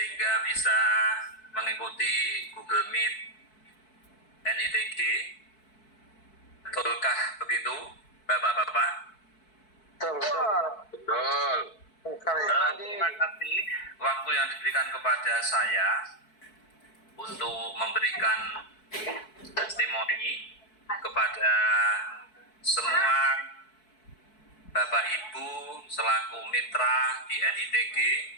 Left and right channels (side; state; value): right; late; 4.6 ms